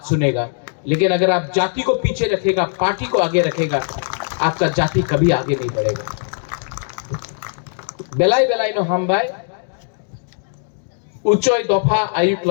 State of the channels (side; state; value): right; silent; digital silence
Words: सुनेगा, लेकिन अगर आप जाति को पीछे रखेगा, पार्टी को आगे रखेगा, आपका जाति कभी आगे नहीं बढ़ेगा। बेलाई बेलाई नो हम बाय उच्चोय दफा आयुक्त